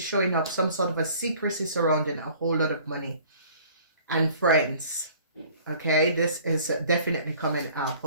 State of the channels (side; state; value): both; inverted; correlation -0.52